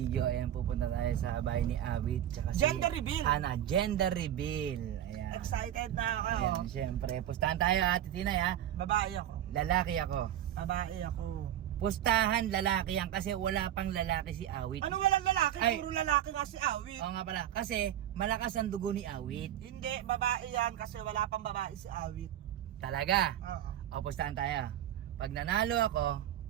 ayan, pupunta tayo sa bahay ni Awit. Tsaka si Gender reveal. Ana, gender reveal. Ayan. Excited na ako. Ayan, syempre. Pustahan tayo, Ate Tinay, ha? Babae ako. Lalaki ako. Babae ako. Pustahan, lalaki yan kasi wala pang lalaki si Awit. Anong walang lalaki? Ay. Puro lalaki nga si Awit. Oo nga pala, kasi malakas ang dugo ni Awit. Hindi, babae yan kasi wala pang babae si Awit. Talaga. Oo. O, pustahan tayo. Pag nanalo ako,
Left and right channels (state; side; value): quieter; left; 11.5 dB